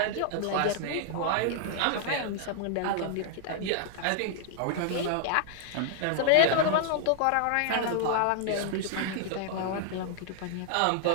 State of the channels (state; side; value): different; both; correlation 0.00